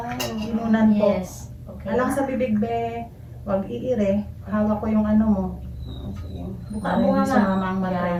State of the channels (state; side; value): identical; both; correlation 1.00